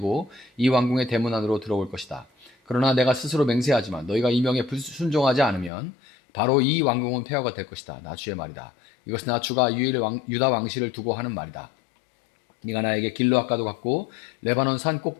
이 왕궁의 대문 안으로 들어올 것이다. 그러나 내가 스스로 맹세하지만 너희가 이 명에 순종하지 않으면 바로 이 왕궁은 폐허가 될 것이다. 나 주의 말이다. 이것은 나 주가 유다 왕실을 두고 하는 말이다. 네가 나에게 길르앗과도 같고 레바논 산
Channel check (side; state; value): right; drops out; at 5.7 s